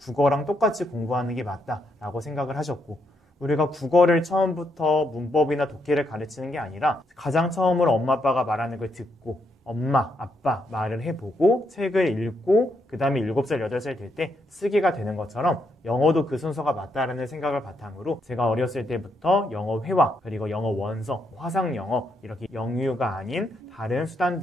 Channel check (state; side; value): normal; both; correlation 0.78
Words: 똑같이 공부하는 게 맞다라고 생각을 하셨고 우리가 국어를 처음부터 문법이나 독해를 가르치는 게 아니라 가장 처음으로 엄마 아빠가 말하는 걸 듣고 엄마, 아빠 말을 해보고 책을 읽고 그 다음에 7살, 8살 될 때 쓰기가 되는 것처럼 영어도 그 순서가 맞다라는 생각을 바탕으로 제가 어렸을 때부터 영어 회화 그리고 영어 원서, 화상 영어 이렇게 영유가 아닌 다른